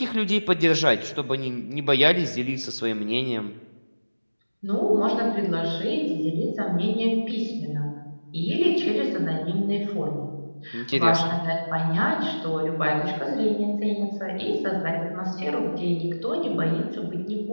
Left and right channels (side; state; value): both; inverted; correlation -1.00